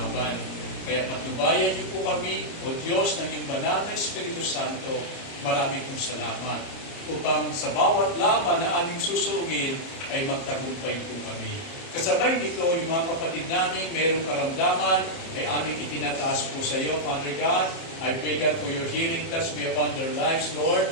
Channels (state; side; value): late; right; 30 ms